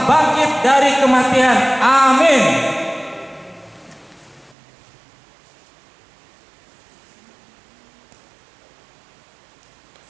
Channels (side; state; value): left; drops out; at 4.5 s